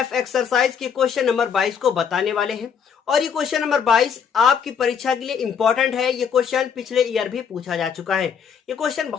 एक्सरसाइज के क्वेश्चन नंबर 22 को बताने वाले हैं। और ये क्वेश्चन नंबर 22 आपकी परीक्षा के लिए इंपॉर्टेंट है। ये क्वेश्चन पिछले ईयर भी पूछा जा चुका है। ये क्वेश्चन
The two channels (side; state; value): right; quieter; 7.1 dB